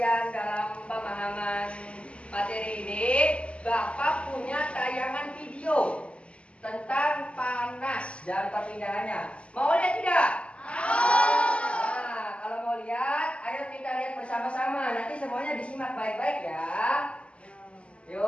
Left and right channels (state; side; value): late; right; 0.058 ms